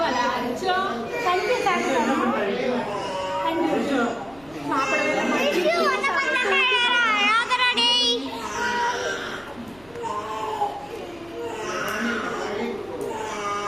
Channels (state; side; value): noise; left; hum, 26 dB below the sound